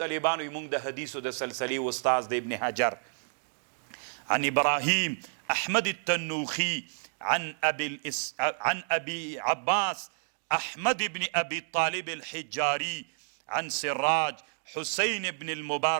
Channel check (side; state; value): left; silent; digital silence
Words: يمونږ د حدیثو د سلسلې استاذ د ابن حجر عن إبراهيم أحمد التنوخي عن أبي عباس أحمد بن أبي طالب الحجاري عن سراج حسين بن